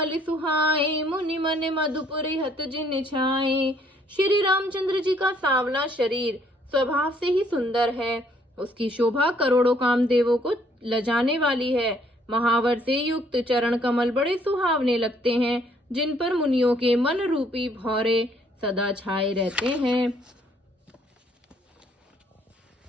सुहाए मुनि मन मधुपुर हत जिन छाए। श्री रामचंद्र जी का सांवला शरीर स्वभाव से ही सुंदर है। उसकी शोभा करोड़ों कामदेवों को लजाने वाली है। महावर से युक्त चरण कमल बड़े सुहावने लगते हैं, जिन पर मुनियों के मन रूपी भौरे सदा छाए रहते हैं।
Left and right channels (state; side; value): normal; both; correlation 0.65